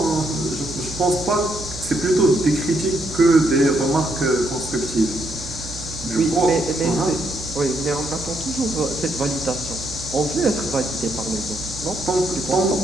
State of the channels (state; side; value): noise; right; hum, 13 dB below the sound